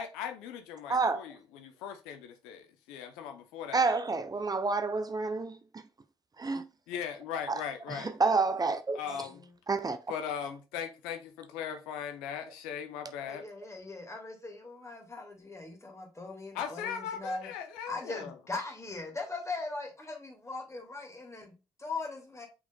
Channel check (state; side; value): normal; both; correlation 0.54